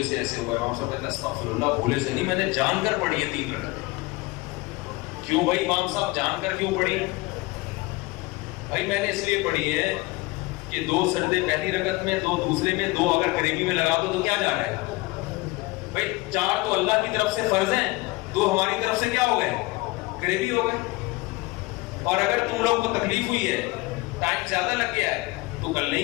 سے ایسے ہوا ہے، امام صاحب کہتے ہیں استغفر اللہ، بھولے سے نہیں، میں نے جان کر پڑھی ہے 3 رکعتیں۔ کیوں بھائی امام صاحب جان کر کیوں پڑھی؟ بھائی میں نے اس لیے پڑھی ہے کہ 2 سجدے پہلی رکعت میں، 2 دوسرے میں، 2 اگر قریبی میں لگا دو تو کیا جا رہا ہے بھائی؟ 4 تو اللہ کی طرف سے فرض ہیں، 2 ہماری طرف سے کیا ہو گئے؟ قریبی ہو گئے۔ اور اگر تم لوگ کو تکلیف ہوئی ہے، ٹائم زیادہ لگ گیا ہے، تو کل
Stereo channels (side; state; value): right; quieter; 22.9 dB